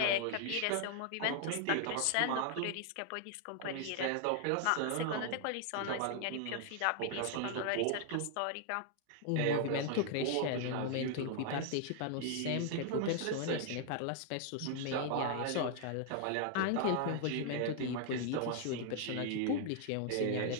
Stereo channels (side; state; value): both; different; correlation 0.00